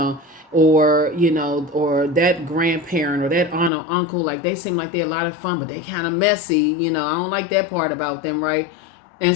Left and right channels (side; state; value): right; drops out; at 3.7 s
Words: or that grandparent or that aunt or uncle, like they seem like they're a lot of fun, but they kind of messy. I don't like that part about them, right?